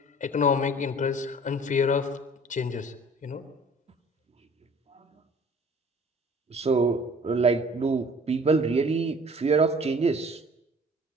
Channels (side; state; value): both; normal; correlation 0.50